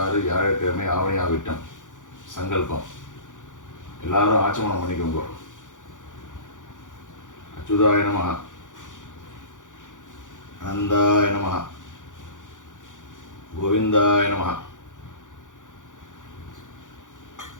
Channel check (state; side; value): late; right; 0.87 ms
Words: வியாழக்கிழமை ஆவணியா விட்டம் சங்கல்பம். எல்லாரும் ஆச்சமனம் பண்ணிக்கோங்க. அச்சுதாய நமஹ, அனந்தாய நமஹ, கோவிந்தாய நமஹ,